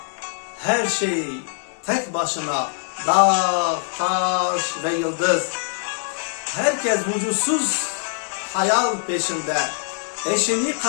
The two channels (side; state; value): right; silent; 64 dB below the other